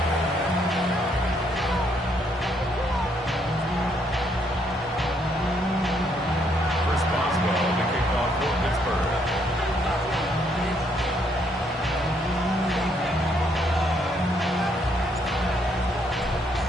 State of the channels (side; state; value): both; normal; correlation 0.71